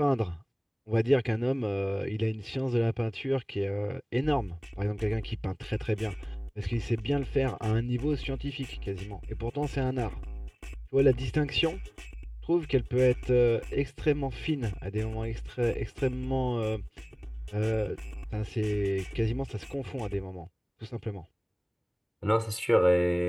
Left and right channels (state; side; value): identical; both; correlation 1.00